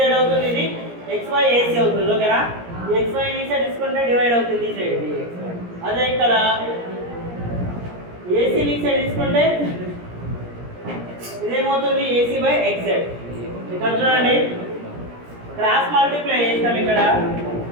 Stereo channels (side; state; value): left; late; 17 ms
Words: అవుతుంది, ఇది XY AC అవుతుంది. ఓకేనా? XY ని ఈ సైడ్ తీసుకుంటే డివైడ్ అవుతుంది ఈ సైడ్. అదే ఇక్కడ AC ని ఈ సైడ్ తీసుకుంటే ఇదేమవుతుంది? AC by XZ. ఇక్కడ చూడండి, క్రాస్ మల్టిప్లై చేస్తాం. ఇక్కడ